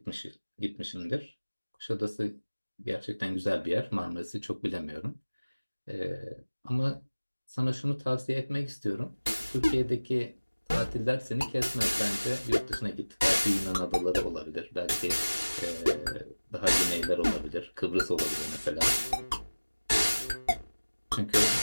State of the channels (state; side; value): inverted; both; correlation -1.00